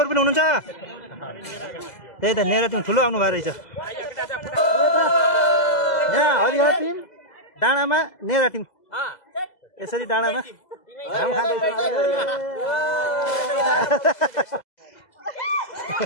पनि हुनुहुन्छ त्यही त नेरा टिम ठुलो आउनु भएको रहेछ यहाँ हरिहर टिम डाँडामा नेरा टिम यसरी डाँडामा घाम खाँदैछ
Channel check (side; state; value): right; late; 2.0 ms